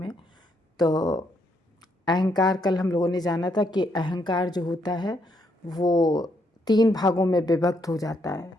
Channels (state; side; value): normal; both; correlation 0.75